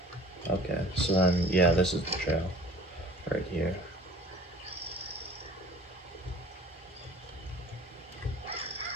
Okay, so then, yeah, this is the trail. Right here.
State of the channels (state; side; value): normal; both; correlation 0.48